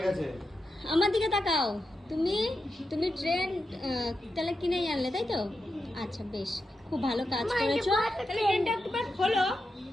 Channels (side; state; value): both; normal; correlation 0.89